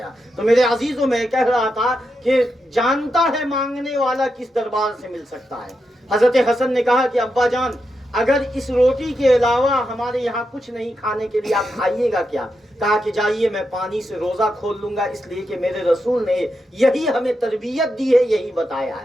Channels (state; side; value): normal; both; correlation 0.86